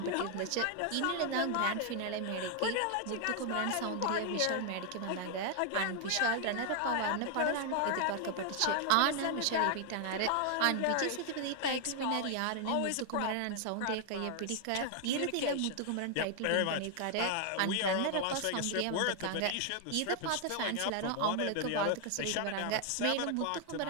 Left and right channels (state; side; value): different; both; correlation 0.00